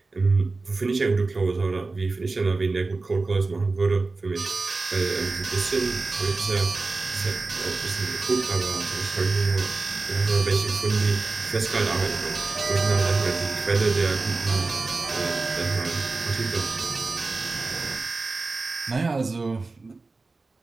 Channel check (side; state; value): left; quieter; 3.7 dB